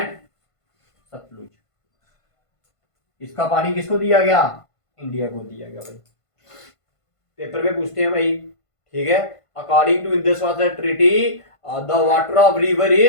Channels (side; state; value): right; late; 1.5 ms